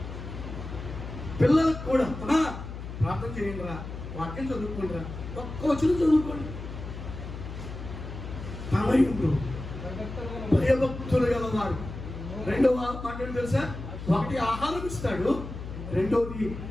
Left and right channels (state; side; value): noise; left; hum, 9 dB below the sound